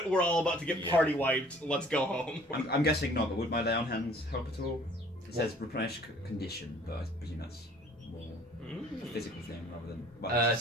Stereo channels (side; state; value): both; normal; correlation 0.54